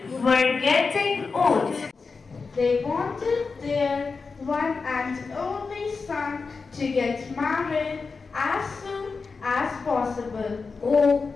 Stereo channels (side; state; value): right; quieter; 4.6 dB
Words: were getting old. They wanted their one and only son to get married as soon as possible. Oh,